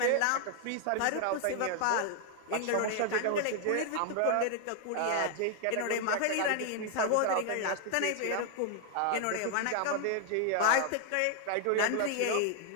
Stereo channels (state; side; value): different; both; correlation 0.00